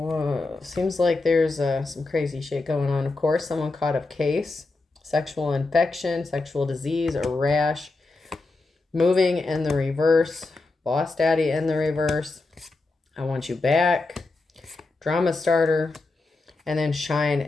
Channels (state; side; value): quieter; right; 3.4 dB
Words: seems like there's some crazy shit going on. Of course, someone caught a case. Sexual infection, sexual disease, or rash, moving in the reverse, boss daddy in the reverse, I want you back, drama starter, and then shine